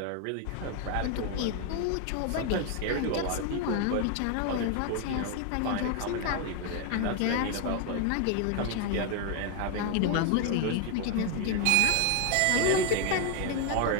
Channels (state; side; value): different; both; correlation 0.01